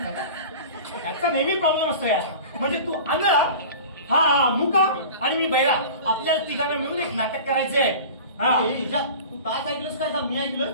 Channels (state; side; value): inverted; both; correlation -0.37